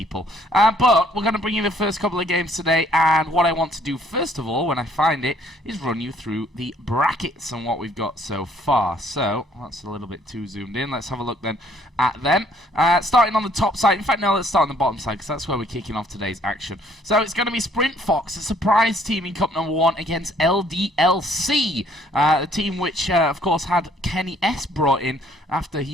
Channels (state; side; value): normal; both; correlation 0.62